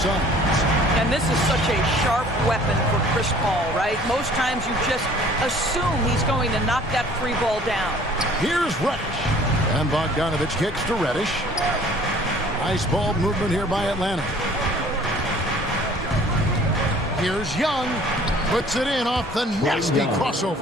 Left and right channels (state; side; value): normal; both; correlation 0.52